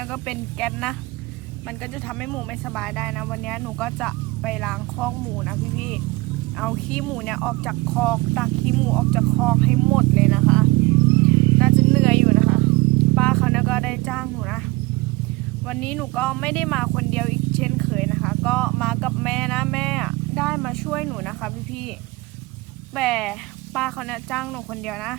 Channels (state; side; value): quieter; left; 20.9 dB